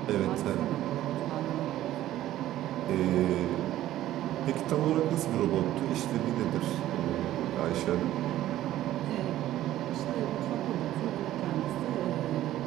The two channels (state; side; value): quieter; left; 13.8 dB